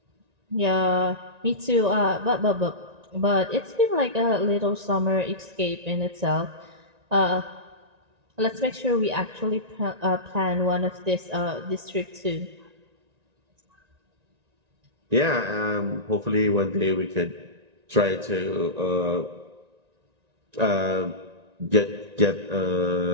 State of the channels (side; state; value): left; late; 1.9 ms